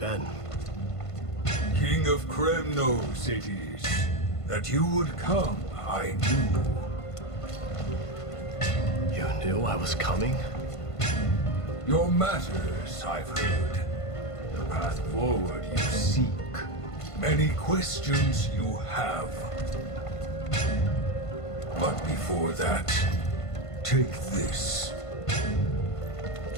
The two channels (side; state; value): right; late; 1.5 ms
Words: King of Kremnos it is. That you would come, I knew. You knew I was coming? Your matters, I've heard. The path forward you seek. Many questions you have. But before that, take this.